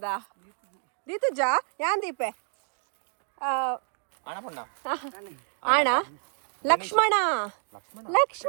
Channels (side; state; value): left; silent; 55 dB below the other